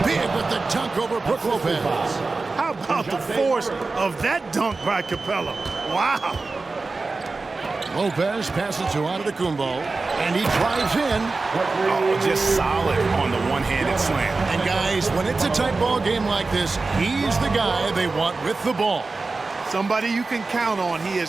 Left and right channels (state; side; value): quieter; left; 3.7 dB